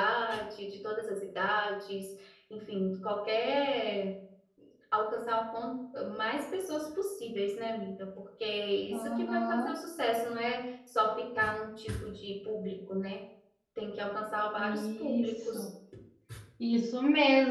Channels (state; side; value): identical; both; correlation 1.00